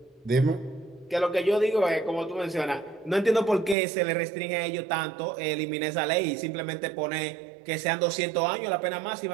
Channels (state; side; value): drops out; left; at 3.8 s